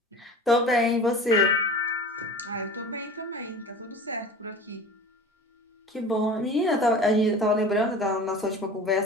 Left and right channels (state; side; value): normal; both; correlation 0.38